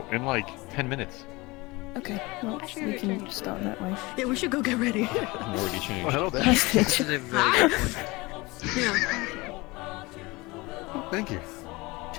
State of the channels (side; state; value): right; quieter; 23.3 dB